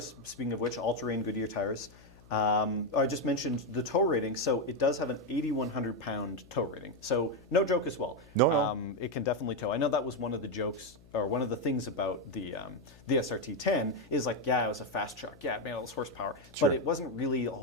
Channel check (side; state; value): left; noise; hum, 24 dB below the sound